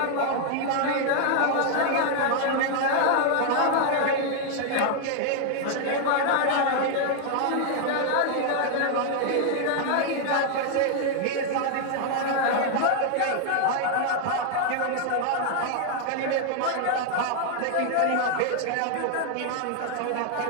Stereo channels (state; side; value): different; both; correlation 0.00